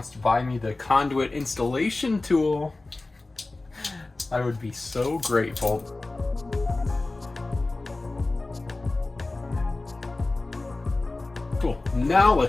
to buy me the conduit installation tool, I would be so grateful. Cool, now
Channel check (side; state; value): right; quieter; 3.2 dB